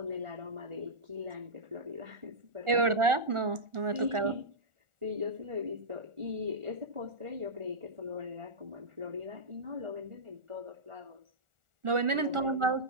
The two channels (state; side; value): late; left; 1.4 ms